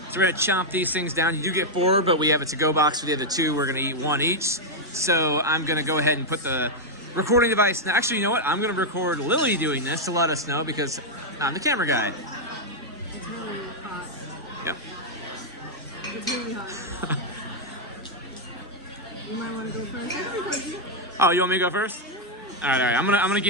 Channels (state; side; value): normal; both; correlation -0.02